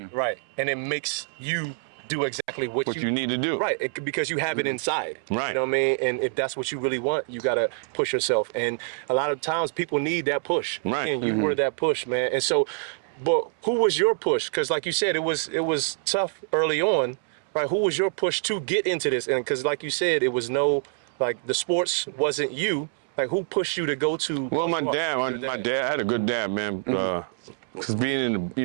And it makes you do exactly what you need to do. Right, because you have it inside. Right. You know what I mean? And if that's what you really want, you got to push yourself. And a lot of times people need that push. Right. And you were that push, man. And so, but who was your push? Because like you said, it was tough early on, right? Who was your push to get into this? And because like you said, it was the sports wasn't you. Like who pushed you to go to? Well, my dad, I had a good dad, man. Because being in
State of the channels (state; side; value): silent; left; 61 dB below the other